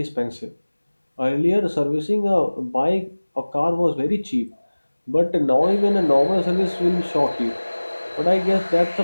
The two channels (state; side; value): inverted; both; correlation -1.00